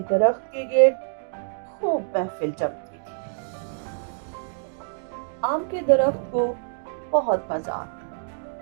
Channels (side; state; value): left; silent; digital silence